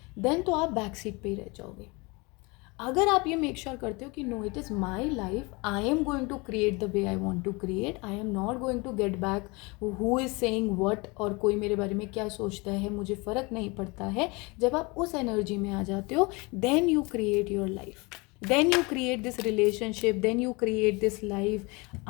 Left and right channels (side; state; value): right; quieter; 26.9 dB